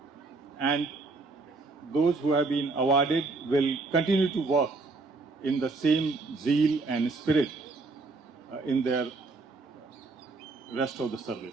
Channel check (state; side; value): quieter; left; 3.7 dB